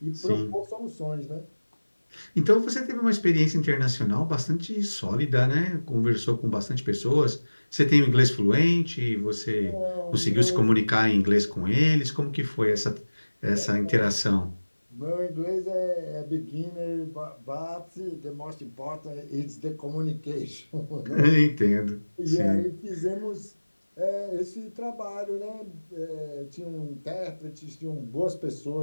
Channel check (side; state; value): both; inverted; correlation -1.00